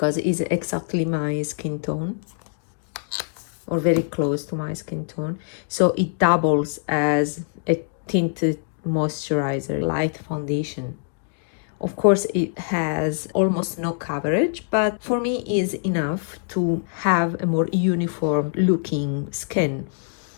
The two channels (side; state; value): right; silent; digital silence